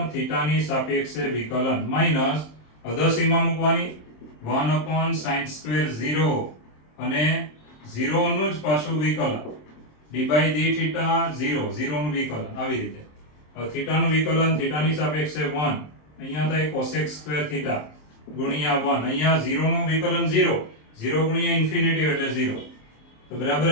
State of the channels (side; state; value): right; late; 27 ms